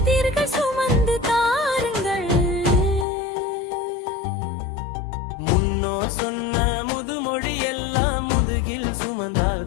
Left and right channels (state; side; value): drops out; right; at 3.1 s